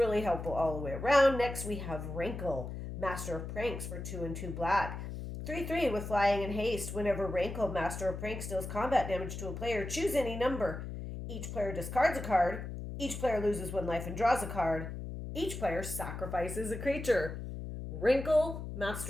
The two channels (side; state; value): left; noise; hum, 7 dB below the sound